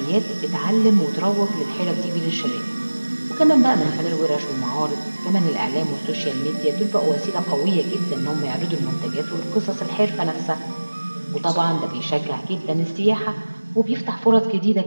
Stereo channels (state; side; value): inverted; both; correlation -1.00